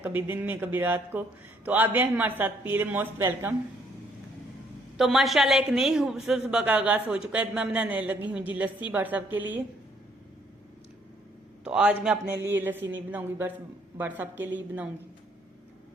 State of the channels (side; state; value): both; normal; correlation 0.66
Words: कभी दिन में कभी रात को। तो आप भी हमारे साथ पी ले, मोस्ट वेलकम। तो माशाल्लाह एक नई खूबसूरत सुबह का आगाज हो चुका है। मैं बनाने लगी हूँ जी लस्सी बट साहब के लिए। तो आज मैं अपने लिए लस्सी नहीं बनाऊंगी, बस बट साहब के लिए बनाऊंगी।